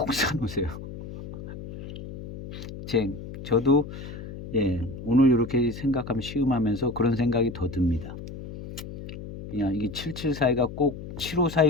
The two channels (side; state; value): left; noise; hum, 11 dB below the sound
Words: 사놓으세요. 저도 예, 오늘 이렇게 생각하면 시음하면서 그런 생각이 더 듭니다. 그냥 이게 7742가 꼭